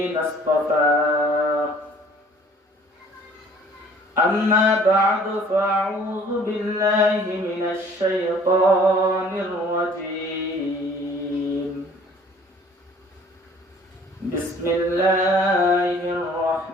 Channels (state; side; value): normal; both; correlation 0.54